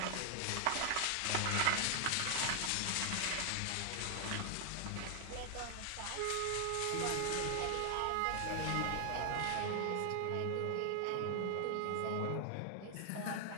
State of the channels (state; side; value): different; both; correlation 0.00